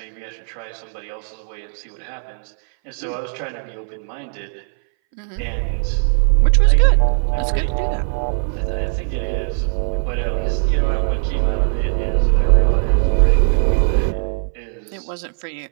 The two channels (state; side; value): silent; left; 63 dB below the other